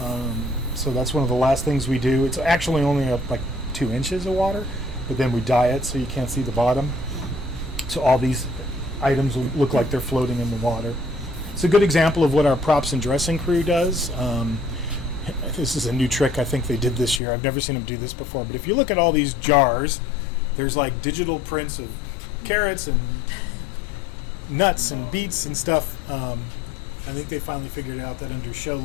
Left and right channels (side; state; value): right; drops out; at 17.2 s